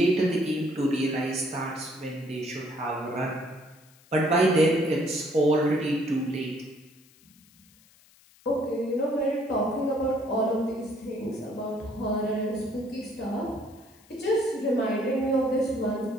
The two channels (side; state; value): left; noise; hiss, 28 dB below the sound